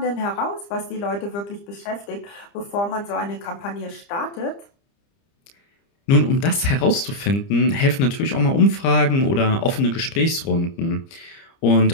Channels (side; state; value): right; late; 30 ms